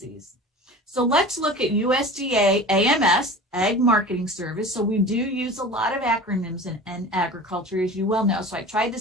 So let's look at USDA AMS, Ag Marketing Service. So we do use a lot of acronyms in agriculture, as you well know. So I tried to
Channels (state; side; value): normal; both; correlation 0.37